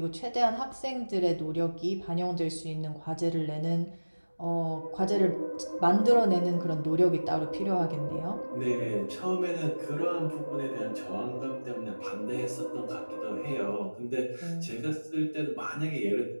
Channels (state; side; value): inverted; both; correlation -1.00